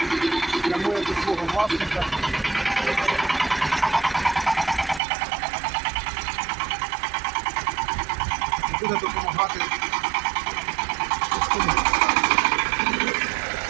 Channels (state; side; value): drops out; left; at 5.0 s